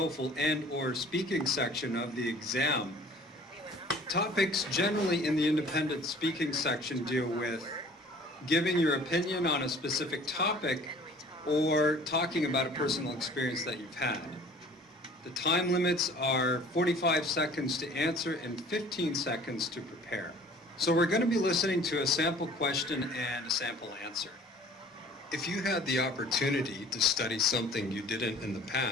and/or speaking section of the exam, topics generally in the independent speaking section deal with giving your opinion on a specific topic or talking about a personal experience that you've had. The time limits are 45 seconds to answer and 15 seconds to prepare. So we're going to be listening to a sample question and a sample answer. If you had the opportunity to study something you didn't in the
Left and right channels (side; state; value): both; normal; correlation 0.50